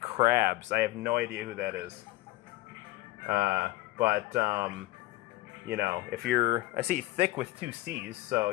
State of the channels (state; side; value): quieter; right; 18.3 dB